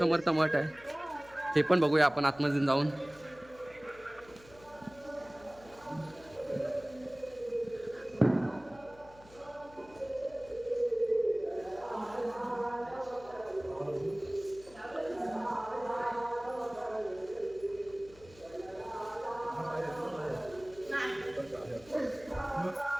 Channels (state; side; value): noise; left; hum, 23 dB below the sound